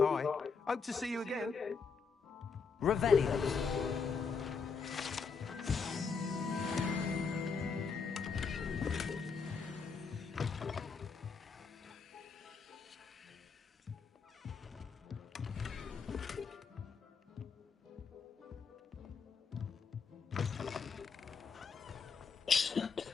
Hope to see you again. Revelio.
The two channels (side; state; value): right; quieter; 5.3 dB